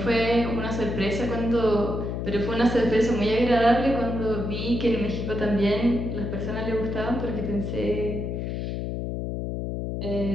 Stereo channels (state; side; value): noise; left; hum, 3 dB below the sound